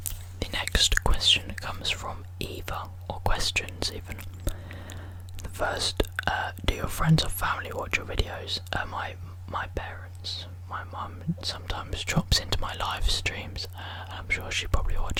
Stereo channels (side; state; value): both; identical; correlation 1.00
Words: The next question comes from Eva, or questions even. The first, do your friends or family watch your videos? My parents. My mum sometimes drops into my live streams, and I'm sure she probably